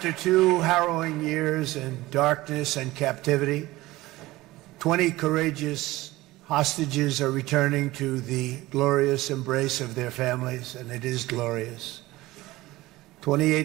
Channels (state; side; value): quieter; left; 18.5 dB